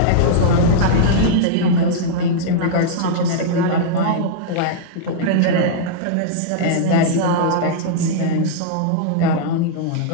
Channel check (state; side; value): different; both; correlation -0.02